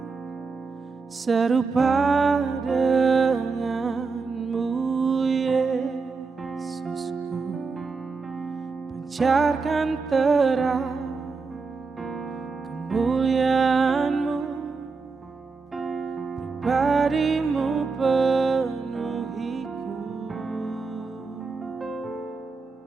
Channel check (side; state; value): left; quieter; 4.5 dB